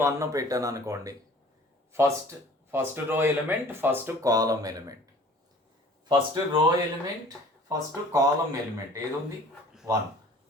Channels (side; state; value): both; normal; correlation 0.49